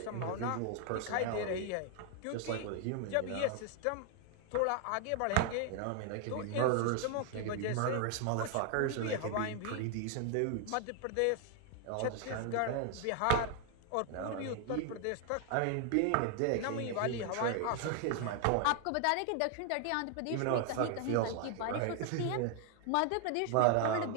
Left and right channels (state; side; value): different; both; correlation 0.00